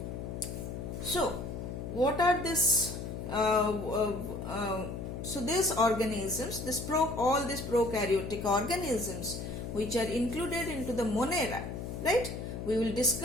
So, what are this? So these organisms, all these prokaryotic organisms which are included into the Monera, right? We will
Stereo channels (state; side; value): noise; left; hum, 6 dB below the sound